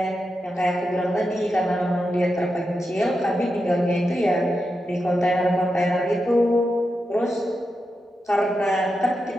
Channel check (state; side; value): normal; both; correlation 0.88